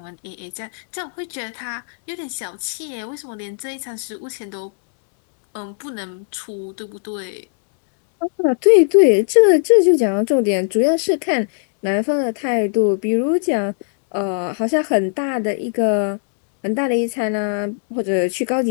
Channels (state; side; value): silent; right; digital silence